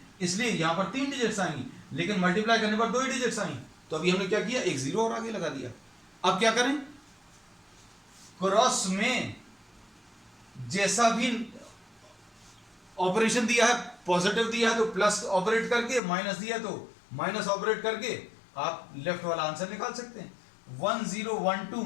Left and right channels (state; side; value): drops out; right; at 16.0 s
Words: इसलिए यहां पर 3 डिजिट्स आएंगी, लेकिन मल्टीप्लाई करने पर 2 ही डिजिट्स आई। तो अभी हमने क्या किया, एक 0 और आगे लगा दिया। अब क्या करें, क्रॉस में जैसा भी ऑपरेशन दिया है, पॉजिटिव दिया है तो प्लस ऑपरेट करके, माइनस दिया है तो माइनस ऑपरेट करके आप लेफ्ट वाला आंसर निकाल सकते हैं। 1012